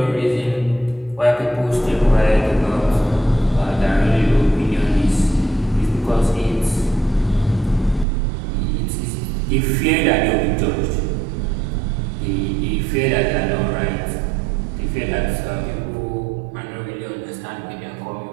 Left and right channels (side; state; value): left; drops out; at 8.1 s